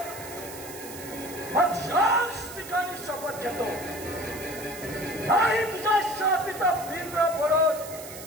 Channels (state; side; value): noise; right; hiss, 13 dB below the sound